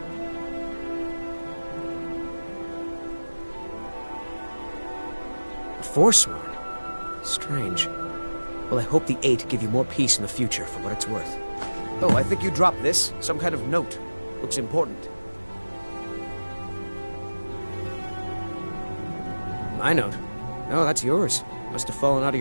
Forsworn? Strange. Well, I hope the Eight give you more peace in the future for what it's worth. Oh, I think you dropped this. Some kind of note. Looks important. My note? No, that's yours. Must have fallen out of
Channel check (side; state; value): both; inverted; correlation -1.00